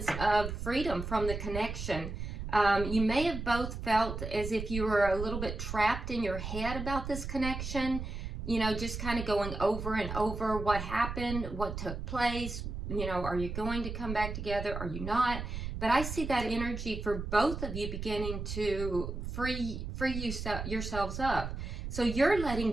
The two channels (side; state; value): right; noise; rumble, 6 dB below the sound